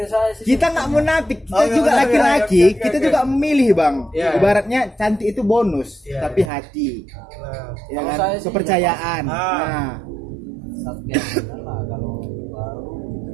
saya sih kita nggak munafik, kita juga laki-laki, kita juga memilih bang. Ibaratnya cantik itu bonus, tapi hati, ya kan, kepercayaan. Nah, lah kalau baru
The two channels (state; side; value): drops out; left; at 6.5 s